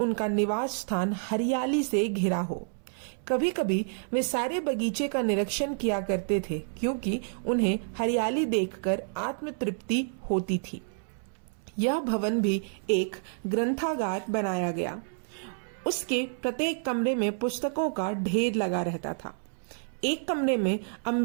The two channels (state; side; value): silent; left; 59 dB below the other